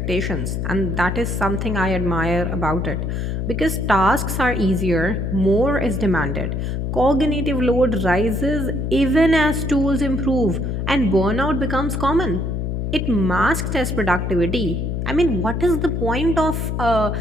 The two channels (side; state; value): left; noise; hum, 2 dB below the sound